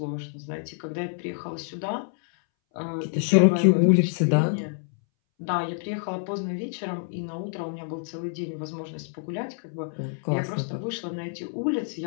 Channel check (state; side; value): silent; right; 60 dB below the other